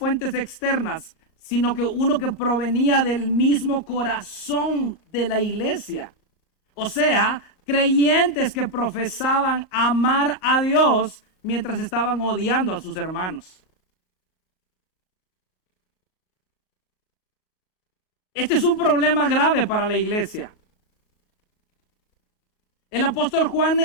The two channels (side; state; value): right; late; 38 ms